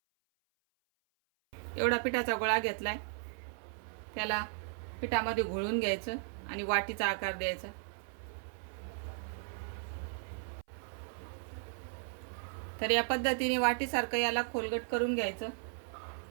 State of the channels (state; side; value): silent; left; 54 dB below the other